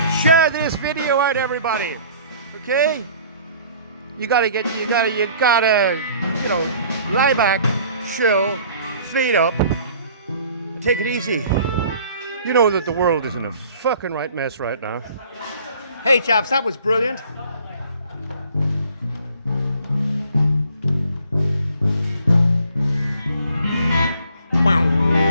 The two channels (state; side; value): inverted; both; correlation -0.54